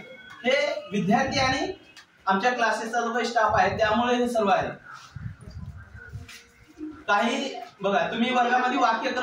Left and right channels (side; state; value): both; identical; correlation 1.00